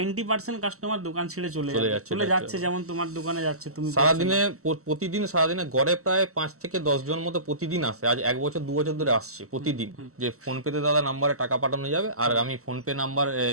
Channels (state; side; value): late; left; 0.64 ms